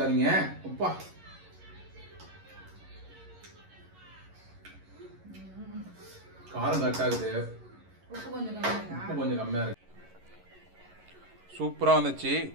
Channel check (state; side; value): late; left; 11 ms